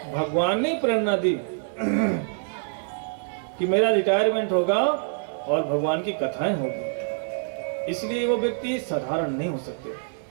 भगवान ने प्रेरणा दी कि मेरा रिटायरमेंट होगा और भगवान की कथाएं होगी। इसलिए वो व्यक्ति साधारण नहीं हो सकते।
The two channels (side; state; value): left; silent; digital silence